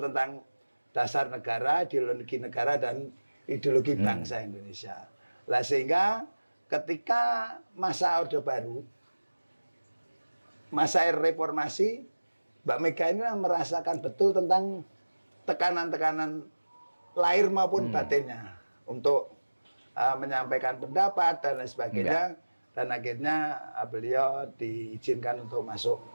dasar negara, ideologi negara, dan ideologi bangsa Indonesia. Lah sehingga ketika masa Orde Baru, masa reformasi, Mbak Mega ini merasakan betul tentang tekanan-tekanan lahir maupun batinnya untuk menyampaikan pendapat dan lain sebagainya. Dan akhirnya beliau diizinkan untuk masuk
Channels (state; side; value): inverted; both; correlation -1.00